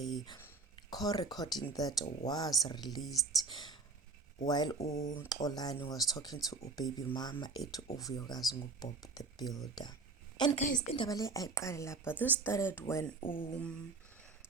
call recording that was released while Xolani was talking to baby mama at vuyokazi Bob the Builder. And guys, indaba le ayiqale lapha. This started when Xolani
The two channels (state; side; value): quieter; left; 4.0 dB